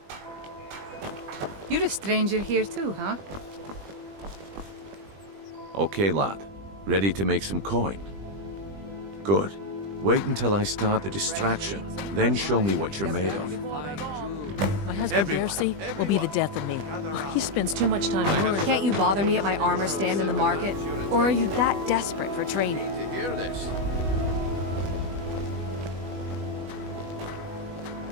You're a stranger here too, huh? Okay, lad. Ready to make some coin? Good. Wait until I start the distraction, then show me what you're made of. My husband Darcy will be the death of me. He spends too much time worrying. Can't you bother me at my armor stand in the market? Or are you that desperate for training? To hear this.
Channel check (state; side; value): late; left; 20 ms